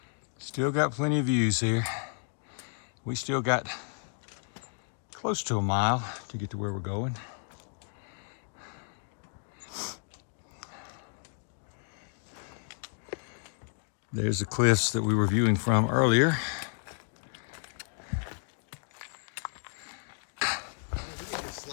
Still got plenty of views here. We still got close to a mile to get to where we're going. There's the cliffs that we were viewing from earlier.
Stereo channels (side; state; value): right; silent; 56 dB below the other